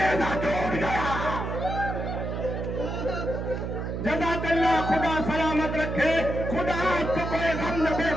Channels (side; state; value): right; noise; hum, 4 dB below the sound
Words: ٹوٹ گیا. جزاک اللہ, خدا سلامت رکھے, خدا آپ کو کوئی غم نہ دے